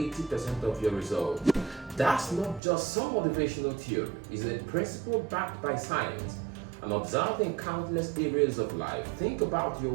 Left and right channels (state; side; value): drops out; left; at 2.6 s